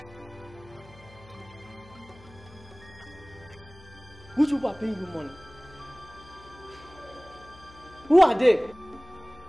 collecting money that people were paying me on their own? Is that what we are saying here? Which people are paying you money? Who are they? Tell me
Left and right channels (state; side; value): noise; left; hum, 22 dB below the sound